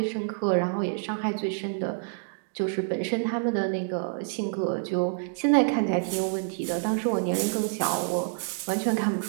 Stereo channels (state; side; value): silent; left; digital silence